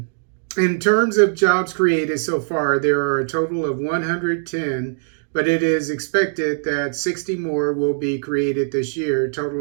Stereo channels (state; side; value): silent; left; digital silence